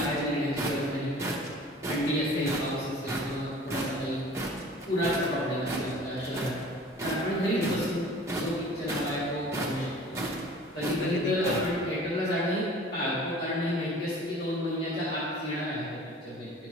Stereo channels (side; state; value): both; normal; correlation 0.46